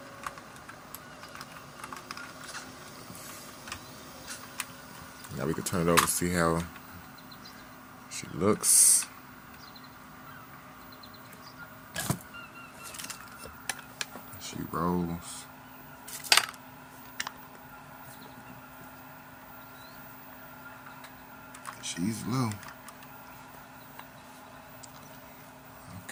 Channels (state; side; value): identical; both; correlation 1.00